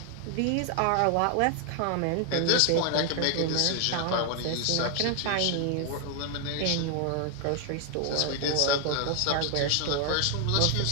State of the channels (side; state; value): both; different; correlation 0.00